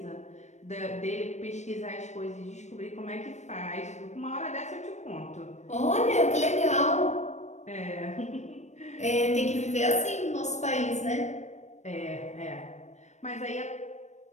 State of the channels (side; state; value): right; late; 0.34 ms